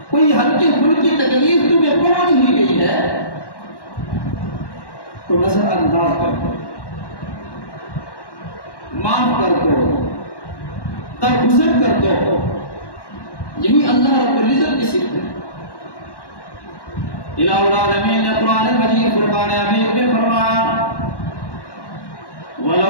کوئی ہلکی پھلکی تکلیف تمہیں پہنچ ہی گئی ہے، تو نظر انداز کر دو، معاف کر دو، درگزر کر دو۔ یہی اللہ رب العزت کی صفت ہے۔ الہ العالمین نے قرآن مجید فرقان حمید میں فرمایا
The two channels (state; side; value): late; right; 1.1 ms